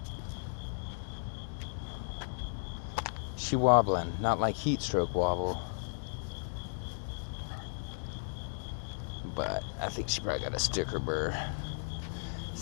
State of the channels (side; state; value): right; silent; digital silence